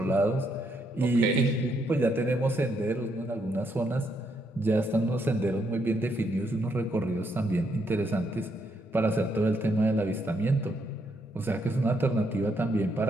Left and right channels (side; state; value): both; normal; correlation 0.76